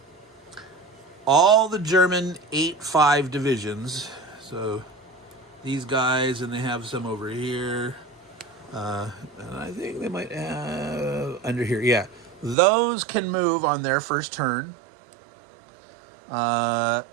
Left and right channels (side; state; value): left; drops out; at 12.6 s